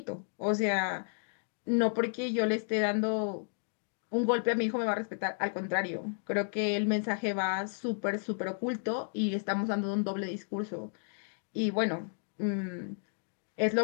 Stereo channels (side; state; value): right; silent; digital silence